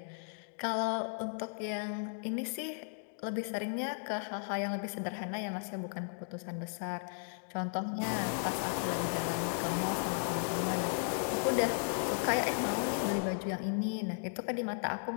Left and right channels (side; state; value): right; silent; digital silence